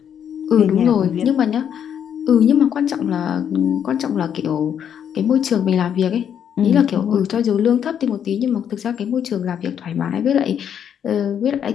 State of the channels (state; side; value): quieter; right; 8.7 dB